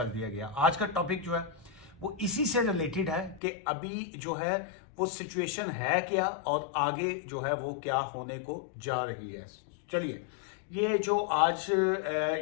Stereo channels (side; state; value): right; drops out; at 3.4 s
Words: दिया गया। आज का टॉपिक जो है वो इसी से रिलेटेड है कि अभी जो है वो सिचुएशन है क्या और आगे जो है वो क्या होने को जा रही है। चलिए, ये जो आज